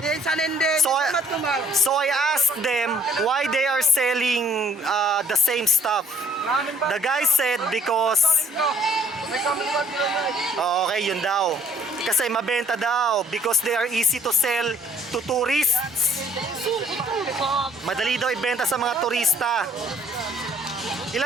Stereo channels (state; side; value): normal; both; correlation 0.60